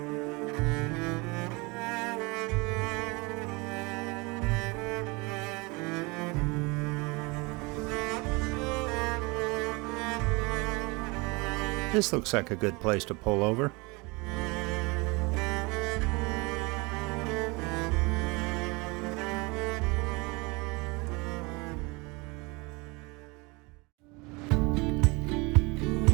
This looks like a good place to pull over.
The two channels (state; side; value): quieter; left; 26.5 dB